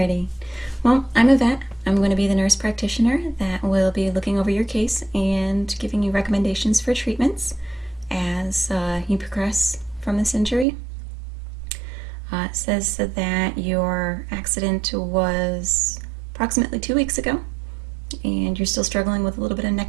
Well, I'm a vet. I'm going to be the nurse practitioner that will be looking over your case and giving you recommendations for treatments as you progress from this injury. It says that your accident was approximately 2 weeks ago, and you're still struggling with a little bit of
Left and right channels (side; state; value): left; drops out; at 10.7 s